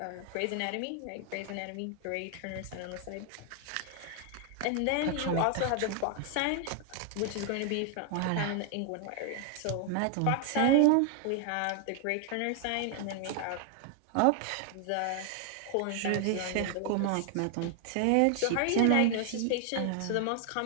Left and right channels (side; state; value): both; different; correlation 0.00